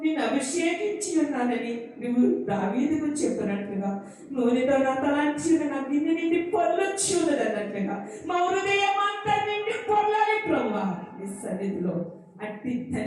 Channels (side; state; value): both; identical; correlation 1.00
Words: నిన్ను అభిషేకించి ఉన్నానని నువ్వు దావీదుకు చెప్పినట్లుగా, నూనెతో నా తలాంచి నా గిన్నె నిండి పొల్లొచ్చి ఉన్నది అన్నట్లుగా మా హృదయం అంతా నిండి పొల్లాలి ప్రభువా నీ సన్నిధిలో. అట్టి